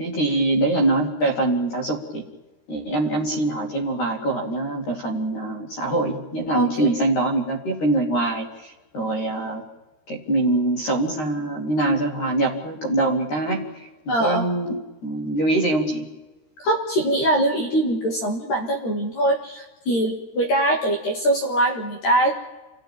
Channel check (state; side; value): late; right; 13 ms